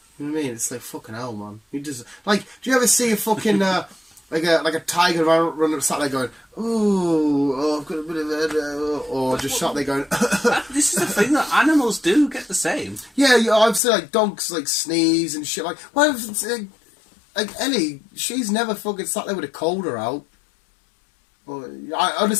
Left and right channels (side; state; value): right; drops out; at 13.8 s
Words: You know what I mean? It's like fucking hell, man. You just do you ever see a fucking like a tiger running sat there going, "Ooh, I've got a bit of a," or just sat there going. This is the thing that animals do get the same. Yeah, I've seen dogs sneeze and shit. Well, Ellie, she's never fucking sat there with a cold or out. Well, I